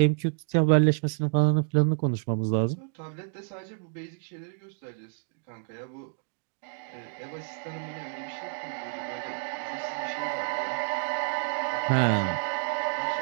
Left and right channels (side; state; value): left; silent; digital silence